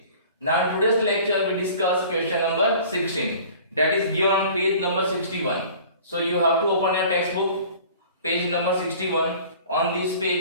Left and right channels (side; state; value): both; inverted; correlation -0.46